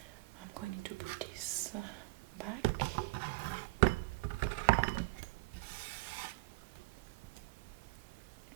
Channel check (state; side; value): quieter; left; 23.3 dB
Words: I'm going to put this back.